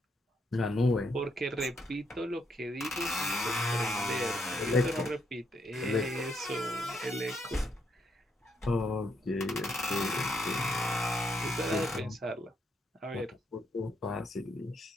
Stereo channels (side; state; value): both; normal; correlation 0.76